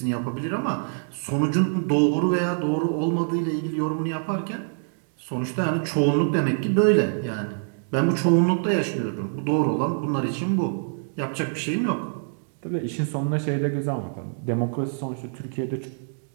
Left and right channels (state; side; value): silent; left; digital silence